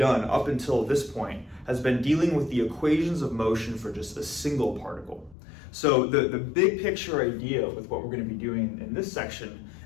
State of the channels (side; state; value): right; drops out; at 5.4 s